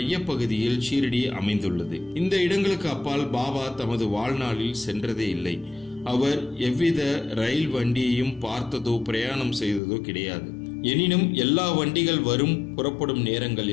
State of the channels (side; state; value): right; drops out; at 9.8 s